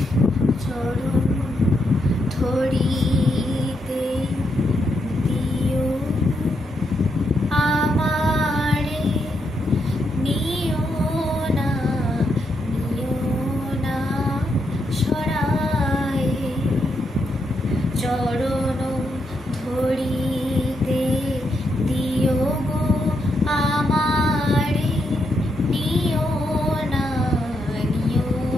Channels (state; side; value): normal; both; correlation 0.80